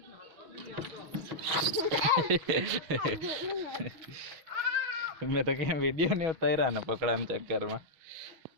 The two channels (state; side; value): late; left; 6.3 ms